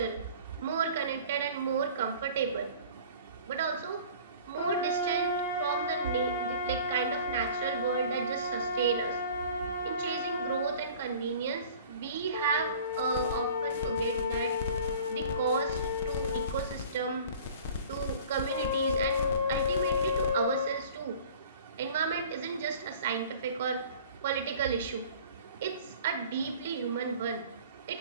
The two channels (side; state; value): both; inverted; correlation -0.46